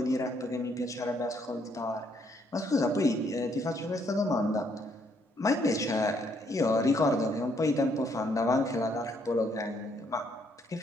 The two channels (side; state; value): both; normal; correlation 0.70